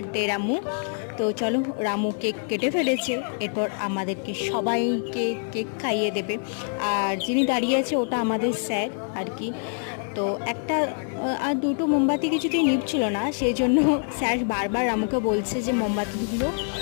রামু। তো চলো, রামু কেক কেটে ফেলেছে, এরপর আমাদেরকে সবাইকে কেক খাইয়ে দেবে। আর যিনি দাঁড়িয়ে আছে ওটা আমাদের স্যার আর কি। তো একটা আর দুটো মোমবাতি কিছুতেই নিভছিল না, সেই জন্য স্যার বারবার রামুকে বলছে যে মোমবাতিগুলো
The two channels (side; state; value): right; silent; 56 dB below the other